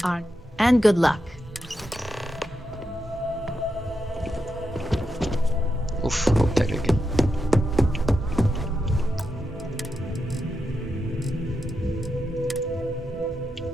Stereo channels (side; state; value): both; normal; correlation 0.86